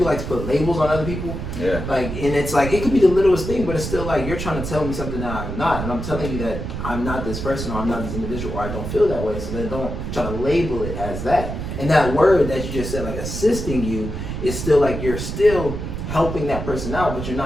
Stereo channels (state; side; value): noise; right; rumble, 5 dB below the sound